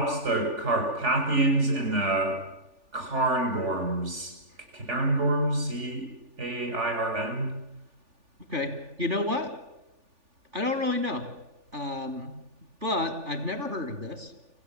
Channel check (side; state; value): left; late; 3.4 ms